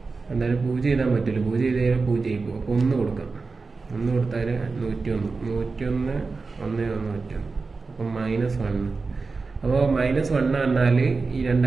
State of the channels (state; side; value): quieter; left; 4.2 dB